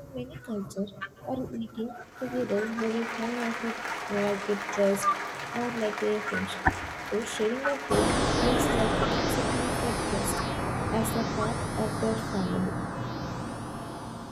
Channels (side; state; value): both; identical; correlation 1.00